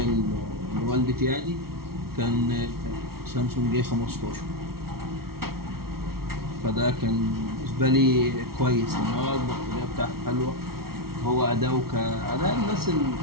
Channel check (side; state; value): left; late; 0.94 ms